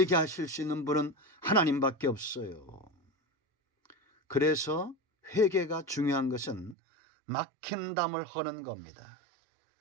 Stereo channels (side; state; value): left; drops out; at 6.8 s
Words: 하실 수 있는 분은 하나님밖에 없어요. 그래서 회개가 중요한 것은 막힌 담을 허는 겁니다.